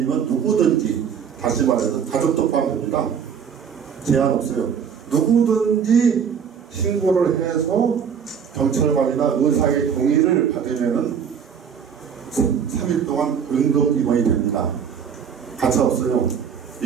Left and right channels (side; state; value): left; quieter; 7.3 dB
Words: 누구든지, 다시 말해서 가족도 포함됩니다. 제한 없어요. 누구든지 신고를 해서 경찰관이나 의사의 동의를 받으면은 3일 동안 응급입원이 됩니다. 가차 없어요.